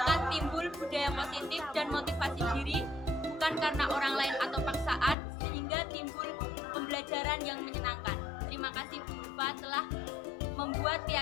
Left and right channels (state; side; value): drops out; right; at 5.2 s